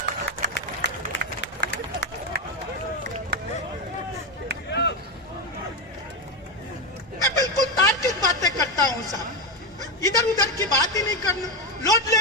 मैं बिल्कुल तार्किक बातें करता हूं साहब, इधर उधर की बात ही नहीं करना, लौट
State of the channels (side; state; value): both; normal; correlation 0.11